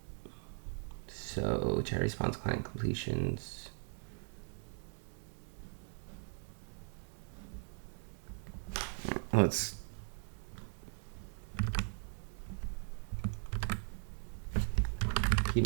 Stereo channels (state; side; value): silent; left; 52 dB below the other